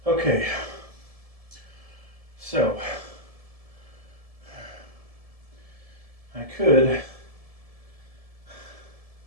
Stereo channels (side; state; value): left; late; 1.7 ms